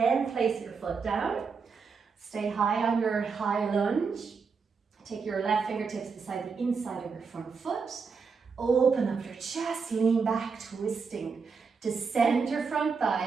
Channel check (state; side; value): quieter; left; 5.3 dB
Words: place your foot down. Stay high on your high lunge. Take your left fingertips beside the inside of your front foot. Open up your chest, lean back, twisting. Descend your front